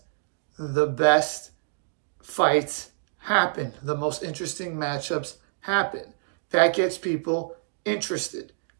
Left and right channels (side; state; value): left; silent; digital silence